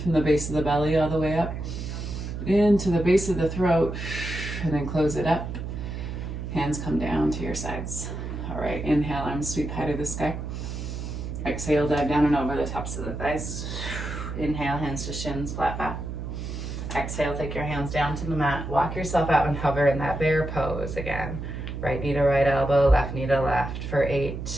from the base of the belly all the way up into the base of the throat, and then close it up. Hands come down to your sides. All right, inhale, arms sweep high to the sky. Exhale, dive down and over the tops of the thighs. Inhale, hands to shins, flat back. Exhale, take your hands down to the mat. Walk yourself out and hover in that bear pose again. Right knee to right elbow, left knee to left for 8,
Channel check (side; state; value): right; noise; hum, 6 dB below the sound